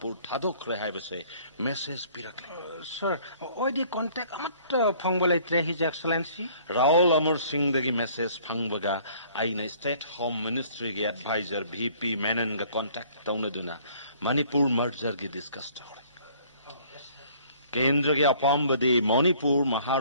thadok rehai base message pirakle. Sir, oidi contact amat phangbalaitre His Excellency. Raul Amar Singh dagi message phangbaga aina State Home Ministry gi advisor VP Menon ga contact taunaduna Manipur merger gi discuss tawre. Kendra gi apambadi Manipur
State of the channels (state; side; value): inverted; both; correlation -0.57